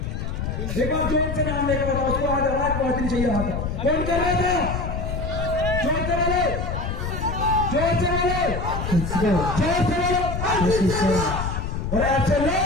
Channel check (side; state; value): left; noise; rumble, 3 dB below the sound